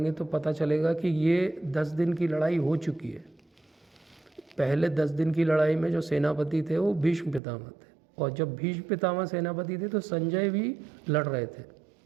तो पता चलेगा कि ये 10 दिन की लड़ाई हो चुकी है। पहले 10 दिन की लड़ाई में जो सेनापति थे वो भीष्म पितामह थे, और जब भीष्म पितामह सेनापति थे तो संजय भी लड़ रहे थे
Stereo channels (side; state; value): left; drops out; at 7.4 s